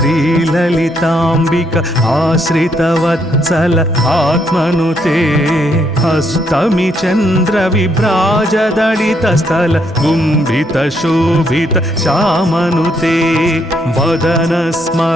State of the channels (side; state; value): both; normal; correlation 0.74